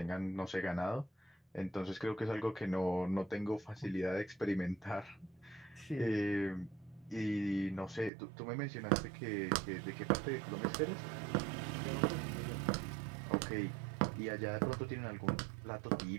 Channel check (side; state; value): left; drops out; at 8.1 s